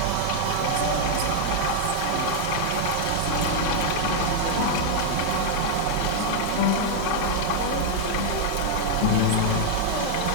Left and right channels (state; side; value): different; both; correlation -0.01